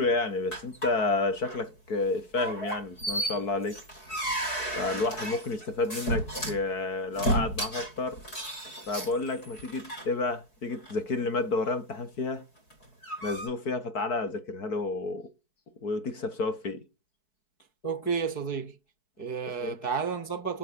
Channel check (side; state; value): right; late; 4.6 ms